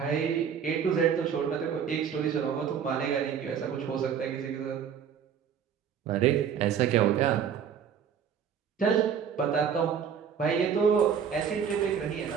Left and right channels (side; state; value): left; quieter; 7.7 dB